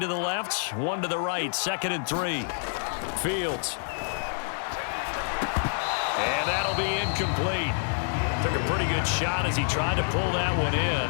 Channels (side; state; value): right; silent; digital silence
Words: the left, 1 to the right. 2nd and 3. Fields. And that'll be incomplete. Took a pretty good shot as he tried to pull that one in.